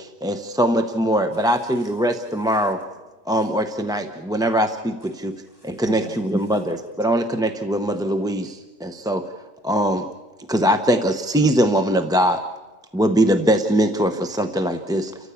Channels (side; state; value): both; normal; correlation 0.61